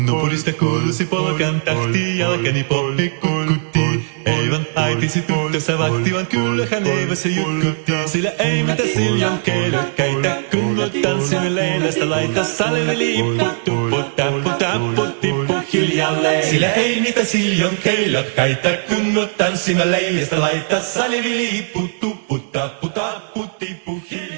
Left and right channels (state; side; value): silent; left; digital silence